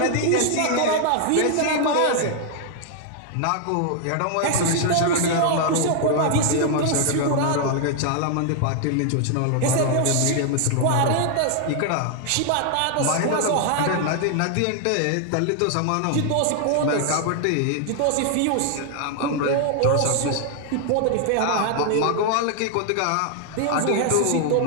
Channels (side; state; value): both; different; correlation 0.00